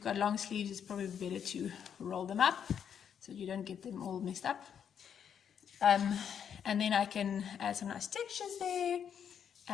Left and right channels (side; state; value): right; quieter; 8.2 dB